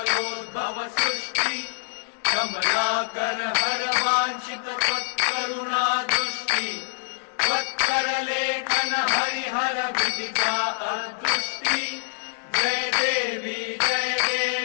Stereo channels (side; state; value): right; silent; digital silence